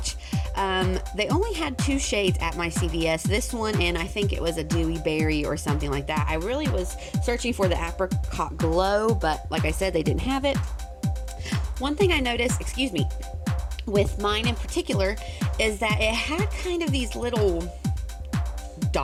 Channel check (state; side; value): identical; both; correlation 1.00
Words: They only had 2 shades at my CVS. This one, and I think it was a Dewy Berry or something like that. I really was searching for the Apricot Glow, but like I said, they didn't have it. One thing I noticed, with mine in particular, is that it had kind of these little